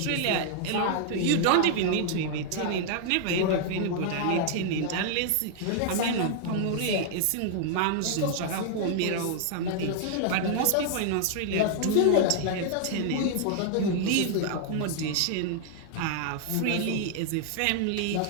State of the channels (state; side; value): different; both; correlation -0.01